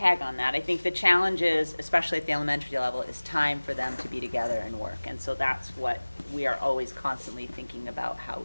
on that, I think the challenge is, especially at the elementary level, is time for them to be together and work. And so that's what we are always constantly thinking about, how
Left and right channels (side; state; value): both; inverted; correlation -1.00